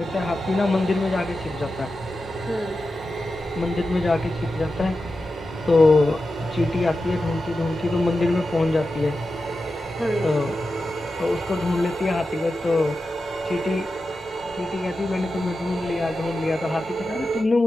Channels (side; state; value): both; normal; correlation 0.91